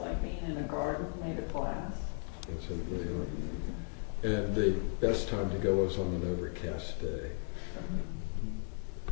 being in a garden made of glass. And the best time to go is on an overcast day.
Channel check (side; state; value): right; silent; 54 dB below the other